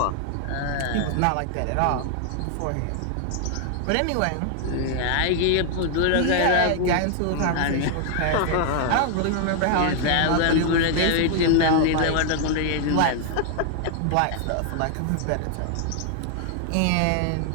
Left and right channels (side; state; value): both; different; correlation 0.00